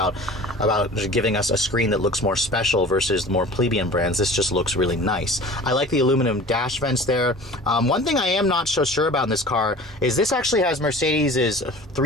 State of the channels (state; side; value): normal; both; correlation 0.41